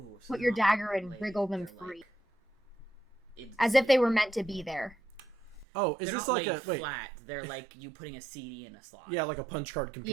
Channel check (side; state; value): left; drops out; at 5.7 s